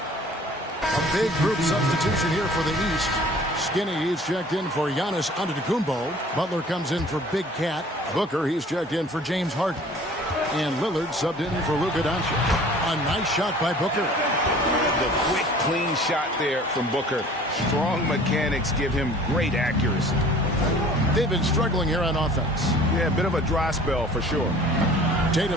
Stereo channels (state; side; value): normal; both; correlation 0.49